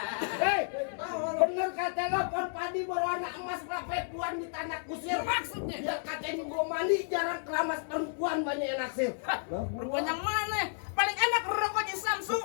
Hei, bener kata lo pon padi berwarna emas perempuan di tanah kusir. Maksudnya? Ya katanya gua mandi jarang keramas perempuan banyak yang naksir. Perempuan yang mana? Paling enak rokok di Samsung.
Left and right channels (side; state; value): right; silent; digital silence